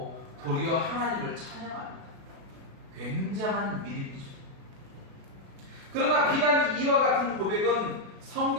도리어 하나님을 찬양합니다. 굉장한 믿음이죠. 그러나 비단 이와 같은 고백은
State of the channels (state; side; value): late; left; 37 ms